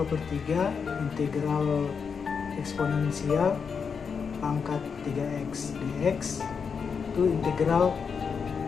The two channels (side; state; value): right; quieter; 6.0 dB